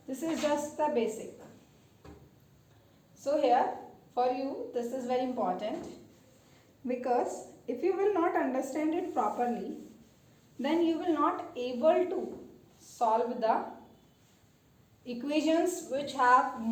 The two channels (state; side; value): identical; both; correlation 1.00